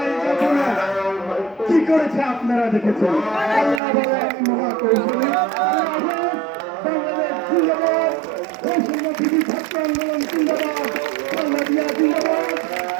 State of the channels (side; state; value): left; drops out; at 3.8 s